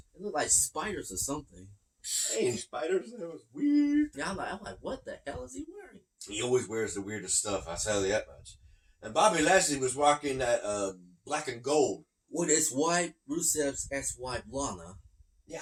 They look like spiders or something. They ain't spiders. That was weird. Yeah, I'm like, what the hell is he wearing? He always wears the weirdest stuff. I'll tell you that much. And Bobby Lashley was rocking that black and gold. With his wife, Rusev's ex-wife, Lana. Yeah,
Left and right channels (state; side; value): identical; both; correlation 1.00